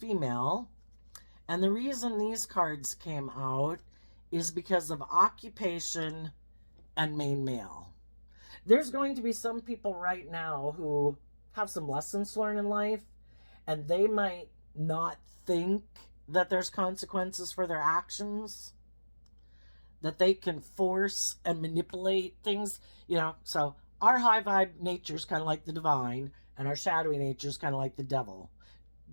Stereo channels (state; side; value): inverted; both; correlation -1.00